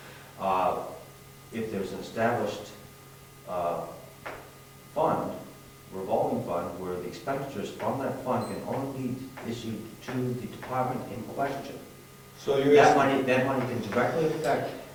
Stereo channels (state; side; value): identical; both; correlation 1.00